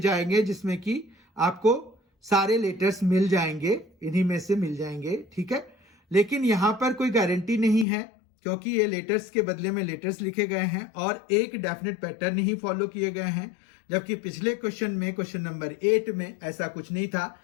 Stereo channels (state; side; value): drops out; right; at 7.9 s